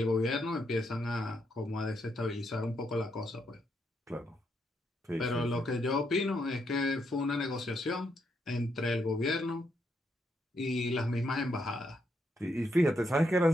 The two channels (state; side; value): normal; both; correlation 0.78